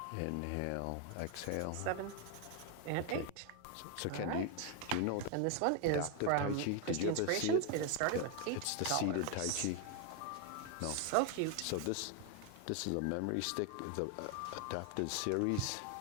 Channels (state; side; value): different; both; correlation 0.01